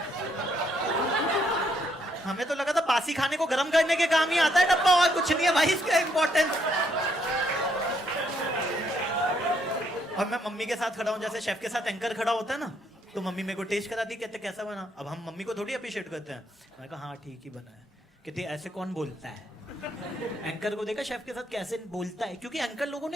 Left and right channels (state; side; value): normal; both; correlation 0.72